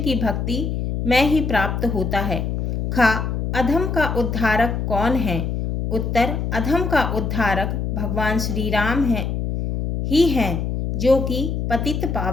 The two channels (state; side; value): noise; left; hum, 2 dB below the sound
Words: भक्ति में ही प्राप्त होता है। खा अधम का उद्धारक कौन है? उत्तर, अधम का उद्धारक भगवान श्री राम ही हैं, जो कि पतित